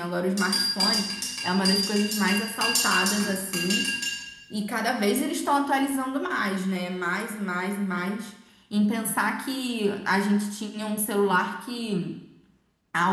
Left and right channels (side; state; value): both; identical; correlation 1.00